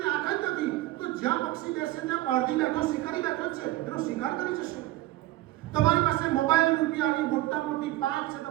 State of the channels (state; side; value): quieter; left; 16.9 dB